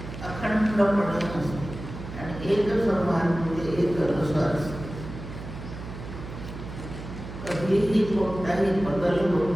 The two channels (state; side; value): noise; right; hum, 11 dB below the sound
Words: अखंडपणे असते आणि एक समान म्हणजे एक रस असते। कधीही कोणताही बदल होत